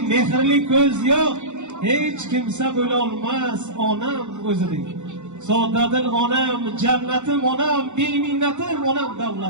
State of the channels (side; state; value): left; late; 0.84 ms